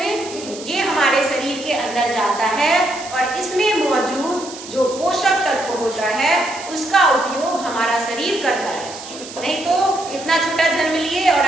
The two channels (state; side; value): noise; right; hiss, 14 dB below the sound